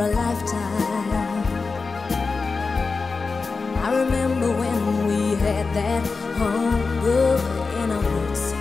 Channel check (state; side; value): quieter; right; 4.3 dB